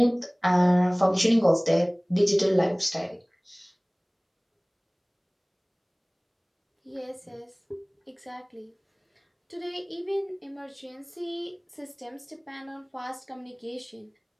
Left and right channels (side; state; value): both; identical; correlation 1.00